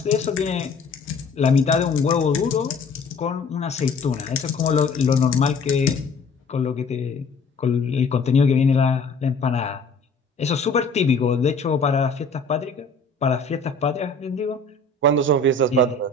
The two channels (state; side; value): quieter; right; 3.7 dB